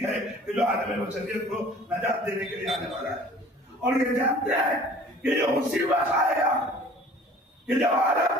ہے کہ جو عالم بشریت کو نجات دینے کے لیے آنے والا ہے، اور یہ جانتے ہیں کہ یہ اسی وقت آئے گا کہ جب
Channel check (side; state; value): both; normal; correlation 0.48